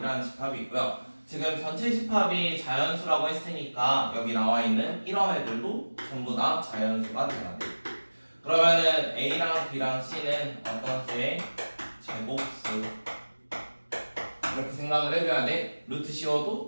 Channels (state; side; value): inverted; both; correlation -1.00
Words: 집합이 있고요. 지금 전체 집합이 자연수라고 했으니까 여기 나와 있는 이런 애들도 전부 다 자연수가 돼야 돼. 그러면은 A랑 B랑 C는 어떤 수의 제곱수 이렇게 생각을 해줘야 돼. 루트 씌워도